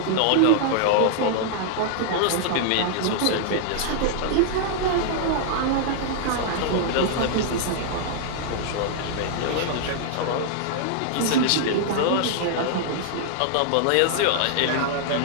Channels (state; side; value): different; both; correlation -0.01